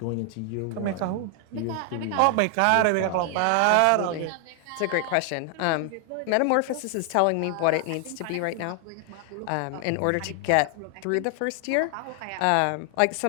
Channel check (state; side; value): different; both; correlation 0.00